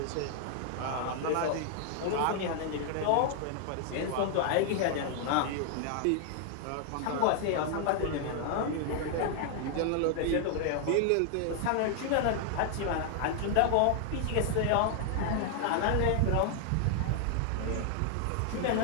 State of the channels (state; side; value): different; both; correlation 0.00